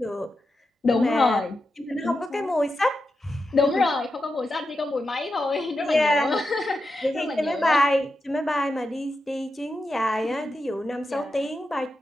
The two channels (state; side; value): normal; both; correlation 0.89